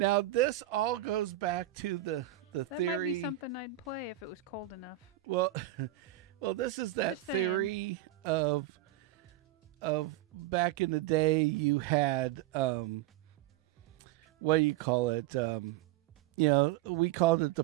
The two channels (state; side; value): quieter; left; 14.0 dB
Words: this all goes back to the that theory. might be something I'd play if it was cold enough. Well, well, this is that Just saying. theory of back in the day. You had what do you call it? We called it the